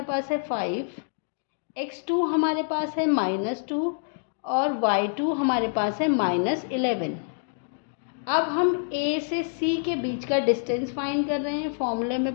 पास है 5, x2 हमारे पास है -2 और y2 हमारे पास है -11। अब हम A से C के बीच का डिस्टेंस फाइंड कर रहे हैं, फॉर्मूले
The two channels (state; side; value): silent; right; digital silence